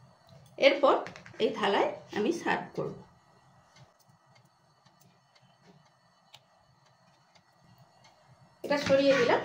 এরপর এই থালায় আমি সার্ভ করব। এটা সরিয়ে দিলাম,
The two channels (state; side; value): identical; both; correlation 1.00